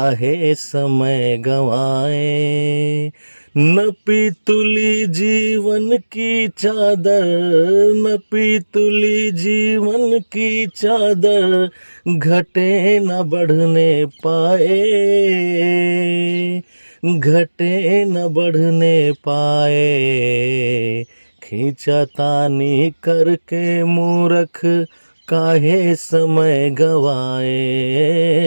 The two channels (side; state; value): both; inverted; correlation -1.00